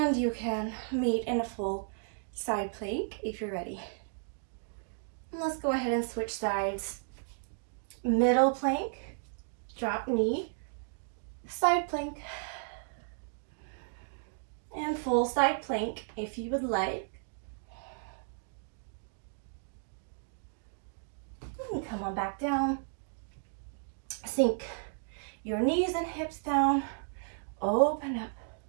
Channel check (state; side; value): silent; left; digital silence